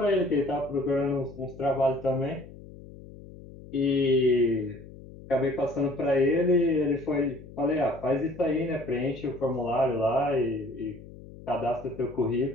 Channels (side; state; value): left; noise; hum, 17 dB below the sound